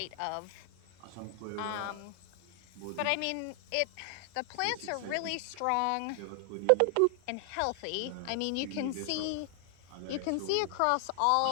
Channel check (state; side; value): different; both; correlation 0.00